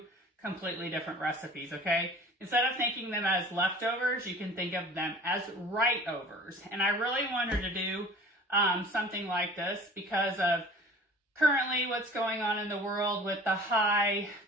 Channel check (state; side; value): normal; both; correlation 0.44